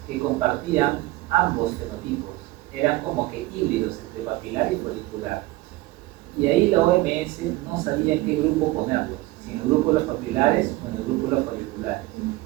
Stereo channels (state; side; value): quieter; left; 18.9 dB